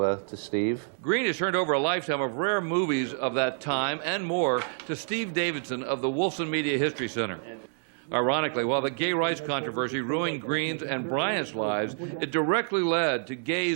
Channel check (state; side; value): silent; left; 59 dB below the other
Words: Steve. Green has turned over a lifetime of rare movies of that time and more to Steve Davidson of the Wolfson Media History Center. Ironically, while the gay rights controversy ruined Green's and Bryant's lives, it directly led to